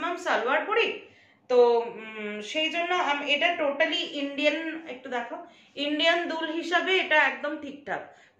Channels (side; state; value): both; identical; correlation 1.00